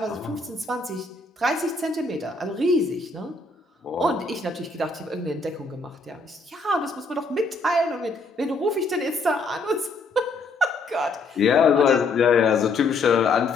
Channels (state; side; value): quieter; right; 3.4 dB